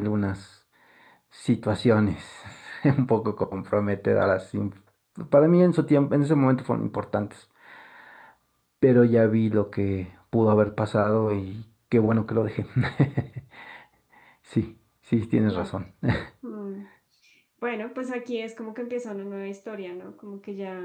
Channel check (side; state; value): both; identical; correlation 1.00